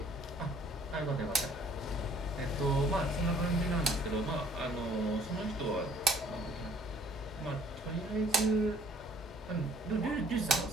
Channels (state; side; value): normal; both; correlation 0.58